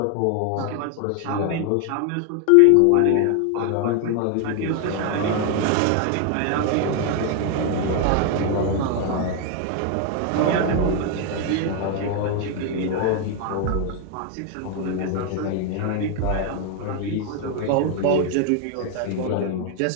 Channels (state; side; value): different; both; correlation 0.01